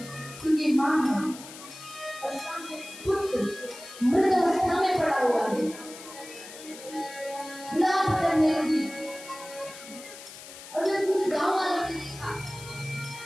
क्योंकि माँ है और सामने पुत्र मृत अवस्था में पड़ा हुआ है, विलाप करने लगी। और जब कुछ गांव वालों ने देखा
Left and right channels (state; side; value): noise; left; hiss, 15 dB below the sound